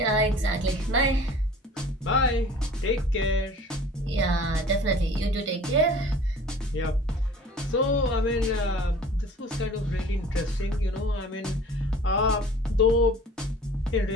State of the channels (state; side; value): normal; both; correlation 0.46